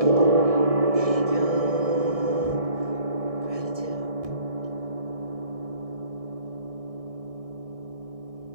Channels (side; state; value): left; late; 1.6 ms